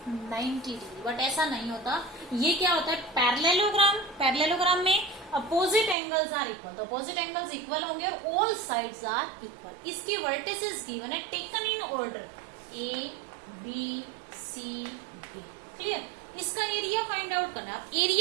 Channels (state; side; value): drops out; left; at 6.0 s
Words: 90 degree. But ऐसा नहीं होता, ये क्या होता है, पैरेललोग्राम. पैरेललोग्राम में अपोजिट एंगल्स आर इक्वल, तो अपोजिट एंगल्स इक्वल होंगे और ऑल साइड्स आर इक्वल. इसकी वर्टिसेस गिवन है taken in order A B C D. Clear. इसका एरिया फाइंड आउट करना है. अब